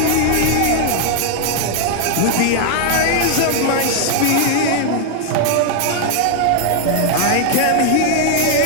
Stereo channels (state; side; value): different; both; correlation 0.00